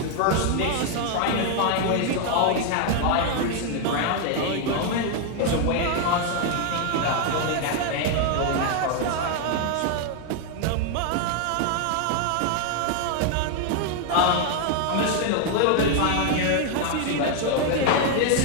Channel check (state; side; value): different; both; correlation 0.00